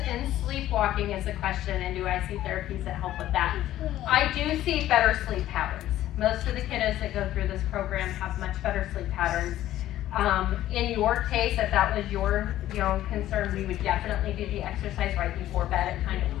sleepwalking is a question, and do I see therapies that help with that? I do see better sleep patterns. Most of the kiddos that go through this program have much better sleep patterns. In your case, if that was your concern, we would definitely do the exercise right before bed. It kind of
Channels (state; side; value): quieter; right; 13.5 dB